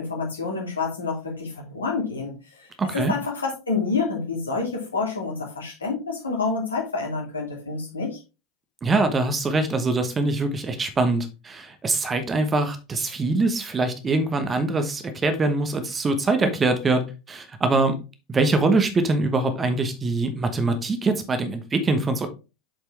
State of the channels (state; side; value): normal; both; correlation 0.52